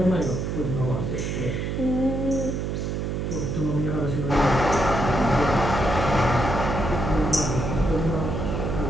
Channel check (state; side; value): noise; right; hum, 2 dB below the sound